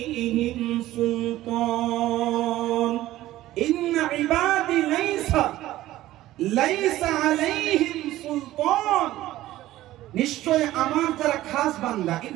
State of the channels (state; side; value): quieter; left; 15.3 dB